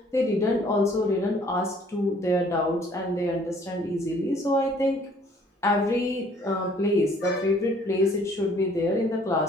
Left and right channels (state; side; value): normal; both; correlation 0.58